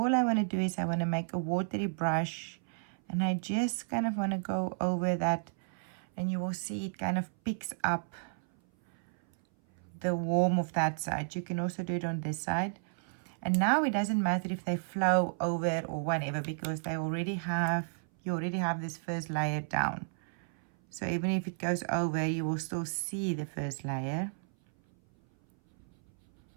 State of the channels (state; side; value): silent; left; 56 dB below the other